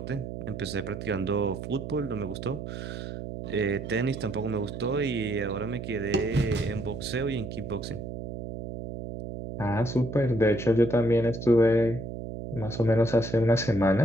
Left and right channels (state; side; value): noise; right; hum, 8 dB below the sound